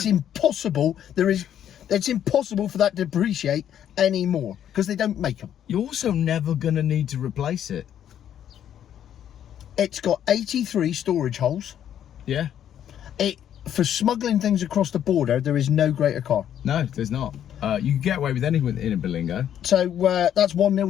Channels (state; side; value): quieter; right; 10.1 dB